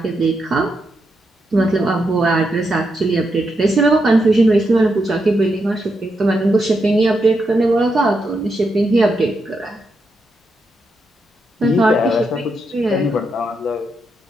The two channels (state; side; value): normal; both; correlation 0.83